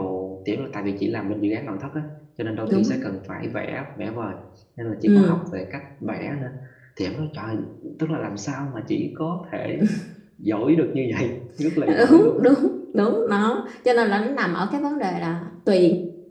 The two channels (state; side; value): identical; both; correlation 1.00